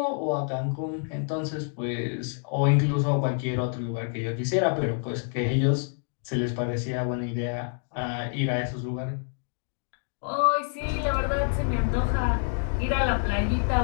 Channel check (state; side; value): silent; right; 59 dB below the other